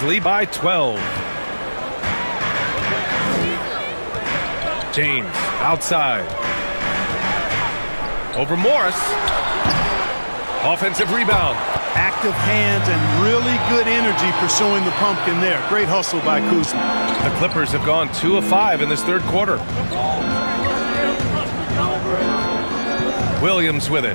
lead by 12. James outside. Over Morris. Offensive rebound. Active hands and really good energy pursuing the pumpkin there. Great hustle by Kuzma. The Clippers have gone 2 of 5 in this third quarter. Williams with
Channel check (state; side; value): inverted; both; correlation -1.00